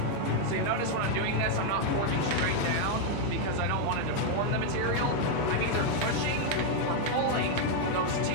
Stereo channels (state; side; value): different; both; correlation 0.01